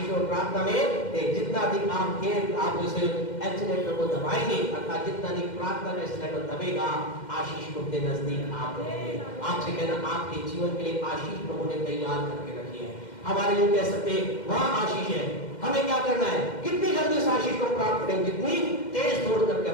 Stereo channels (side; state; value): right; late; 2.1 ms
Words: और प्रार्थना में जितना अधिक आप उस एक्सीलेटर को दबाएंगे, अर्थात जितना अधिक प्रार्थना का एक्सीलेटर दबेगा, आशीष को अपने नजदीक आप रखेंगे। आपसे कहना, आपके जीवन के लिए आशीष प्रभु ने तैयार करके रखी है। हमारे लिए कह सकते हैं वहां आशीष है, हमें क्या करना है, कितनी जल्दी उस आशीष को प्राप्त करेंगे, जितनी तेज दौड़ करके